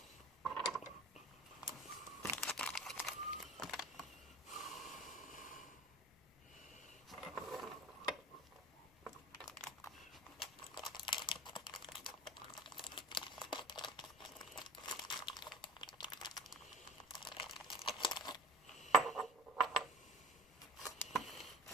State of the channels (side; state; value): left; noise; rumble, 27 dB below the sound